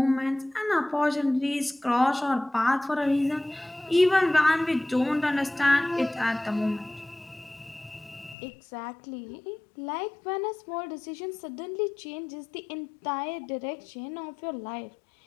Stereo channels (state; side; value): drops out; right; at 8.3 s